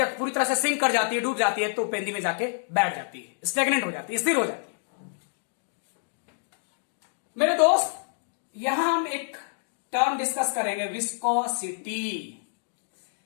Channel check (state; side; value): silent; right; 60 dB below the other